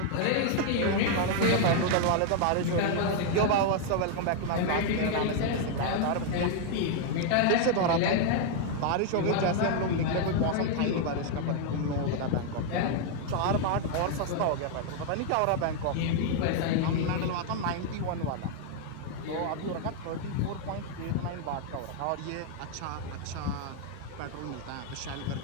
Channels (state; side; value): different; both; correlation 0.00